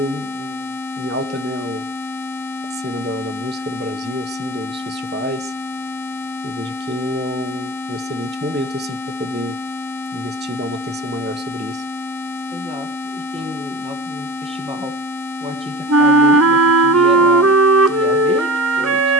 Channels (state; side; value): normal; both; correlation 0.33